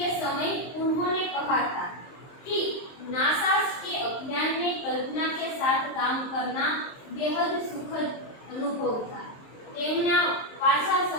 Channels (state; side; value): late; right; 23 ms